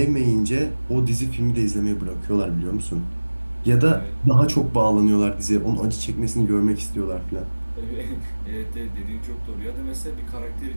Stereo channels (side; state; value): both; inverted; correlation -1.00